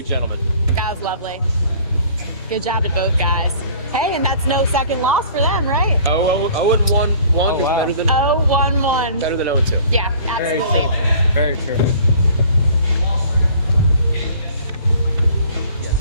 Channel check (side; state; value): both; inverted; correlation -0.51